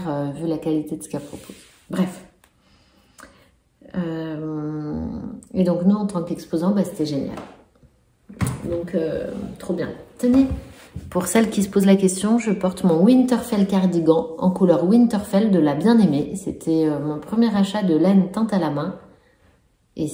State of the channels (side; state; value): both; identical; correlation 1.00